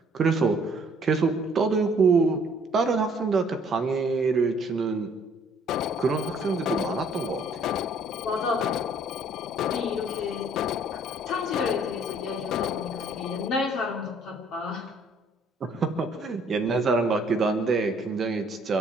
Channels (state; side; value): normal; both; correlation 0.60